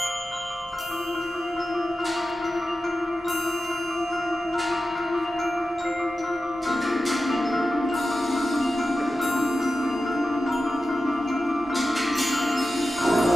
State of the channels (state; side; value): normal; both; correlation 0.92